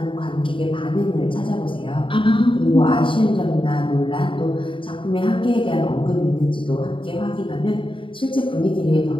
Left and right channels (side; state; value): right; late; 0.25 ms